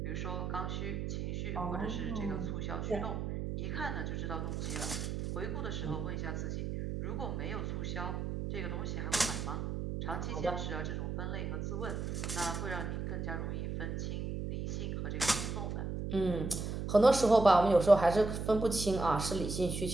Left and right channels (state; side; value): noise; right; hum, 3 dB below the sound